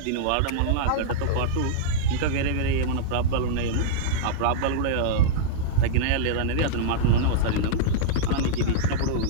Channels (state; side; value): different; both; correlation -0.02